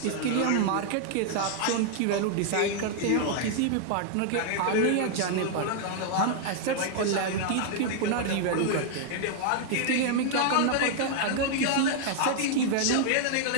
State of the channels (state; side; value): different; both; correlation 0.00